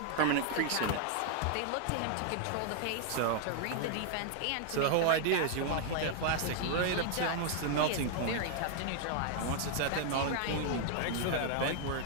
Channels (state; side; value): different; both; correlation 0.00